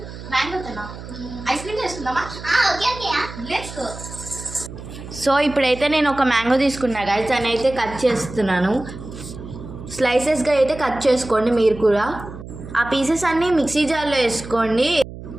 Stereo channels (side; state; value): right; noise; hum, 13 dB below the sound